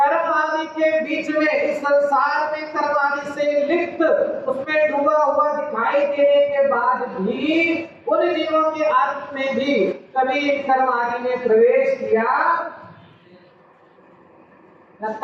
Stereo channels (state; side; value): identical; both; correlation 1.00